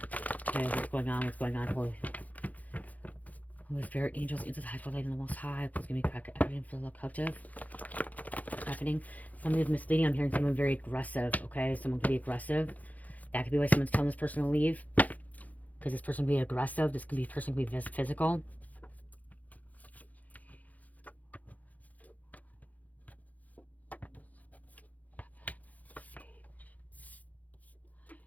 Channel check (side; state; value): right; late; 0.077 ms